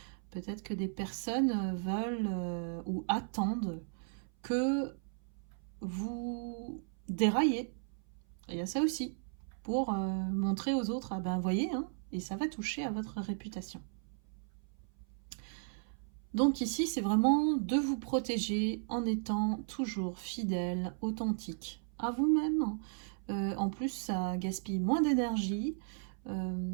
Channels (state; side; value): silent; left; 54 dB below the other